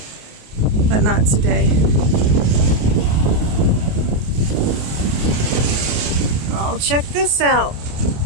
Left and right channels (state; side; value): late; left; 28 ms